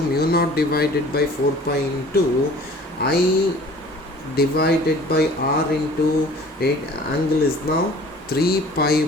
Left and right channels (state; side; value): normal; both; correlation 0.48